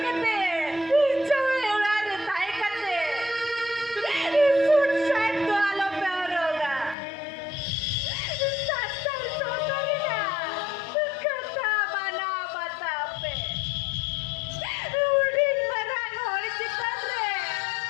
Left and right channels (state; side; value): drops out; right; at 7.0 s